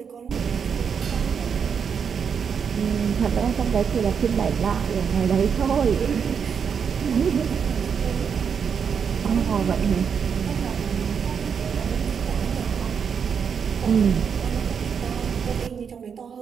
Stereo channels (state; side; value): quieter; left; 6.8 dB